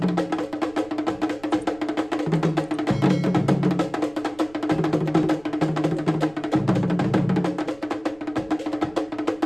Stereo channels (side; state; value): right; noise; rumble, 26 dB below the sound